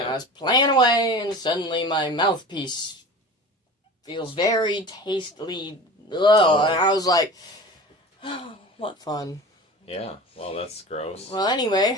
I was playing away, and suddenly my mouthpiece feels very tastily, and I was like, oh, what fun. Yeah, well, that's gross. Well,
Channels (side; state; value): both; normal; correlation 0.36